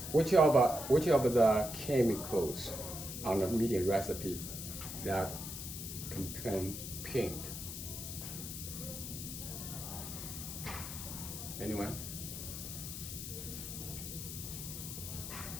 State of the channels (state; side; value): noise; left; hiss, 7 dB below the sound